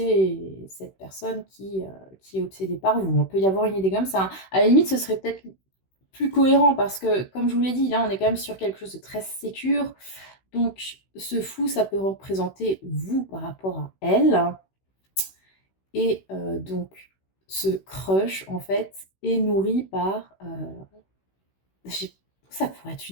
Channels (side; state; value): right; late; 16 ms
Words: cette personne qui est obsédée par vous. On peut y avoir une idée comme ça, hein. À la limite, ce serait peut-être plus cohérent parce que, comme je vous l'ai dit, là, on est quand même sur quelque chose de très sécure. Donc ce fou, ça peut représenter vous par rapport à elle et donc ce crush, en fait, est nourri par, j'ai Ça pourrait être